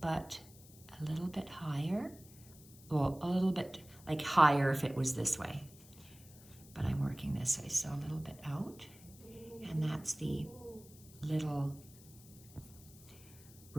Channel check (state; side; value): noise; left; hiss, 21 dB below the sound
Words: a little bit higher. Well, a little bit like higher if it was this way, but I'm working this way, so a little bit out, and that's the little